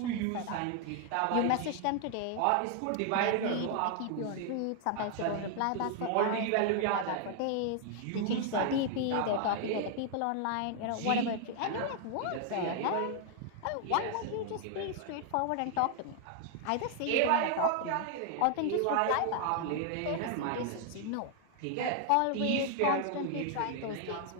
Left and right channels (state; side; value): different; both; correlation 0.00